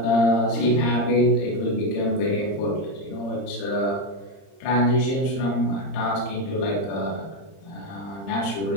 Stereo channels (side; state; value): right; late; 30 ms